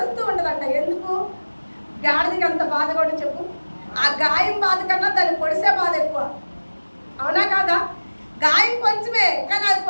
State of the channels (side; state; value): both; inverted; correlation -1.00